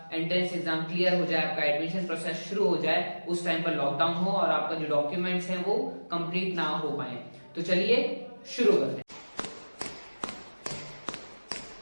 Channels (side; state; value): both; inverted; correlation -1.00